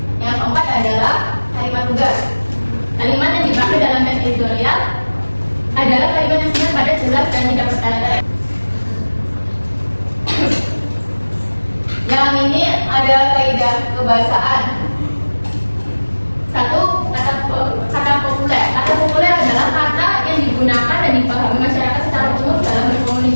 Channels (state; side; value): inverted; both; correlation -1.00